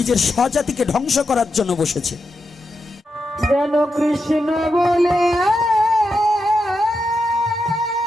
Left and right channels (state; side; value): normal; both; correlation 0.86